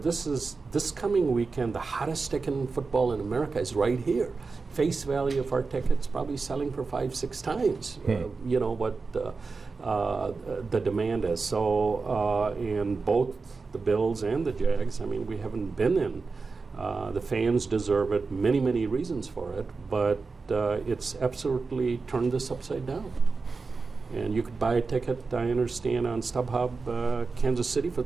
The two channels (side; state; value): left; quieter; 4.3 dB